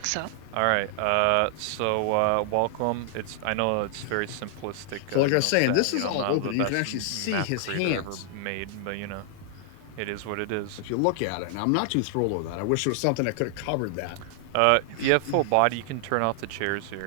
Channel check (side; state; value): both; different; correlation 0.00